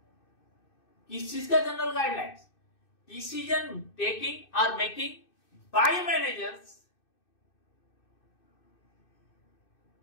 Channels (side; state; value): right; late; 2.6 ms